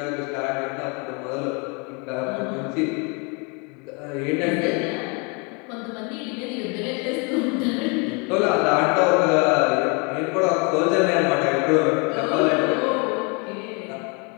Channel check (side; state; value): right; quieter; 32.6 dB